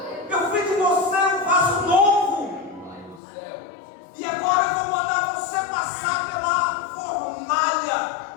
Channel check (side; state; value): right; drops out; at 3.2 s